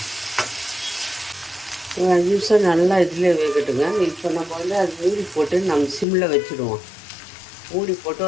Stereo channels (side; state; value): right; drops out; at 6.1 s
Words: ஒரு 5 நிமிஷம் நல்லா இதில் வேகட்டுங்க. இப்போ நம்ம அது மூடி போட்டு நம்ம சிம்மில் வச்சுடுவோம். மூடி போட்டு